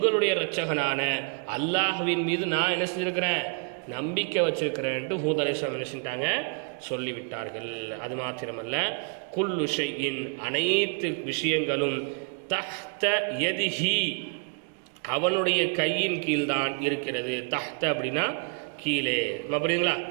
இரட்சகனான அல்லாஹ்வின் மீது நான் என்ன செஞ்சிருக்கிறேன், நம்பிக்கை வச்சிருக்கிறேன்ட்டு ஹூத் அலைஹிஸ்ஸலாம் என்ன செஞ்சிட்டாங்க, சொல்லிவிட்டார்கள். அது மாத்திரமல்ல, குல்லு ஷைஇன், அனைத்து விஷயங்களும், தஹ்த யதிஹி, அவனுடைய கையின் கீழ்தான் இருக்கிறது. தஹ்த அப்படின்னா கீழே, புரியுதுங்களா?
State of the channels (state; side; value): quieter; left; 37.6 dB